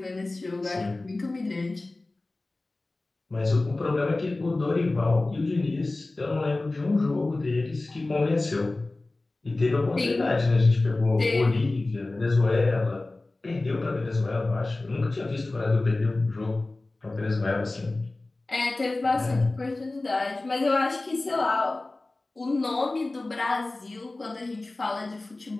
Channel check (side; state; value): right; quieter; 3.0 dB